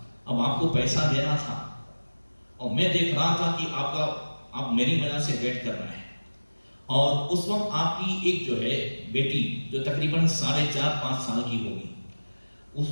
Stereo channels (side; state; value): both; inverted; correlation -1.00